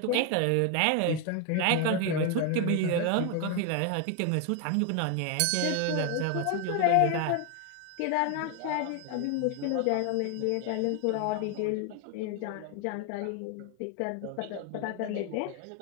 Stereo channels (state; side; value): different; both; correlation 0.01